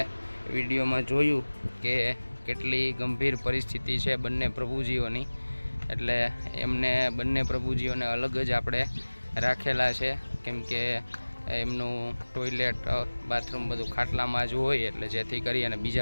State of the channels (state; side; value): inverted; both; correlation -1.00